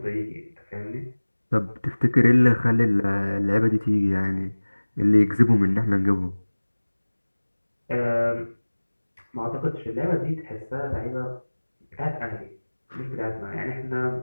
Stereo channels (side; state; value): both; inverted; correlation -1.00